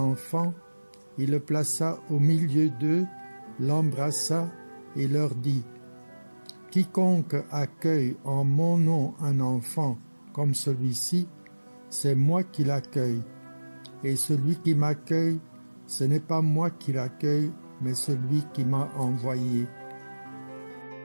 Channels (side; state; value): both; inverted; correlation -1.00